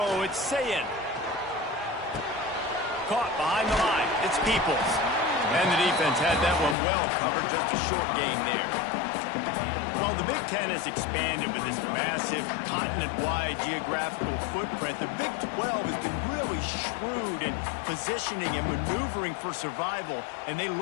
it's Sayin. Caught behind the line, it's Peoples. And the defense had that one well covered, just a short gain there. Well, the Big Ten has expanded with this massive continent-wide geographical footprint. The Big 12 has been really shrewd in positioning and maneuvering for survival, and they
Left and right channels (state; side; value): drops out; right; at 6.8 s